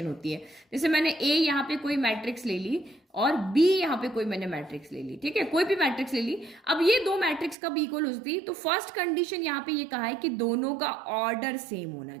होती है। जैसे मैंने ए यहाँ पे कोई मैट्रिक्स ले ली और बी यहाँ पे कोई मैंने मैट्रिक्स ले ली, ठीक है, कोई भी मैट्रिक्स ले ली। अब ये दो मैट्रिक्स कब इक्वल हो सकती है, तो फर्स्ट कंडीशन यहाँ पे ये कहा है कि दोनों का ऑर्डर सेम होना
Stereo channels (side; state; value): left; drops out; at 7.6 s